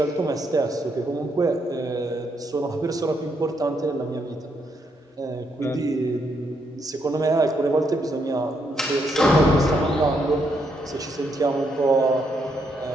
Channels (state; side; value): normal; both; correlation 0.77